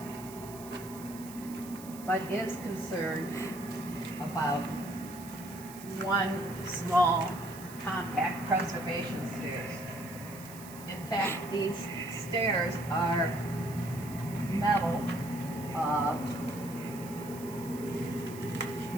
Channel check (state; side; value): noise; right; hiss, 16 dB below the sound